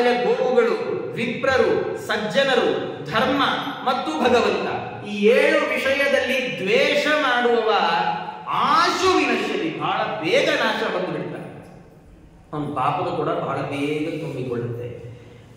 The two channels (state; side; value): identical; both; correlation 1.00